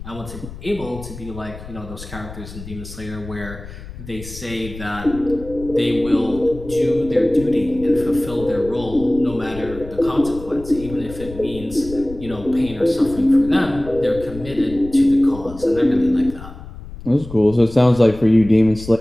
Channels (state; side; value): noise; left; rumble, 14 dB below the sound